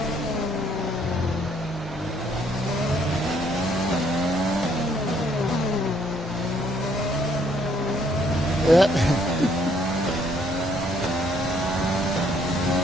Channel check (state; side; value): normal; both; correlation 0.67